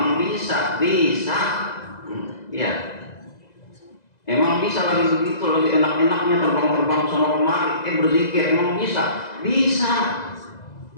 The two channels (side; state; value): right; late; 2.0 ms